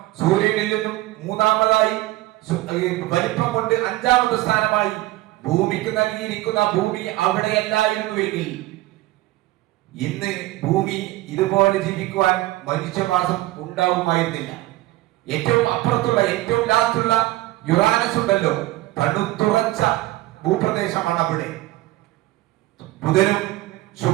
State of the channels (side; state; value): left; quieter; 17.7 dB